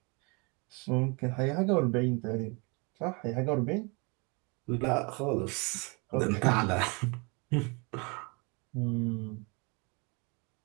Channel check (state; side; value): quieter; left; 30.6 dB